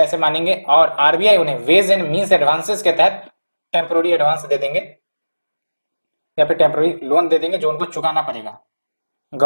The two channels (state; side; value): inverted; both; correlation -1.00